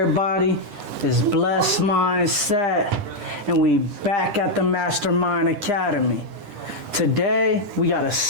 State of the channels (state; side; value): late; left; 10 ms